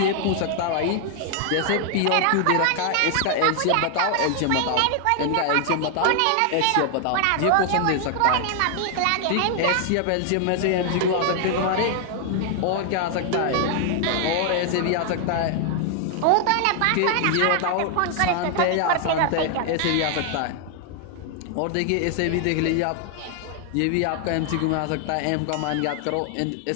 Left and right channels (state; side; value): different; both; correlation 0.00